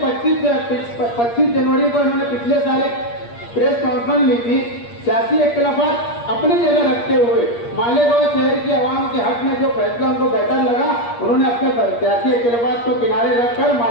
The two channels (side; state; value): right; late; 8.5 ms